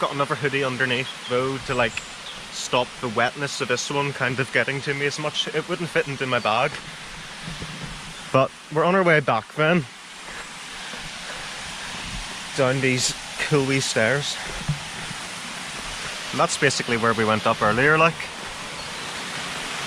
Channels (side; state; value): both; identical; correlation 1.00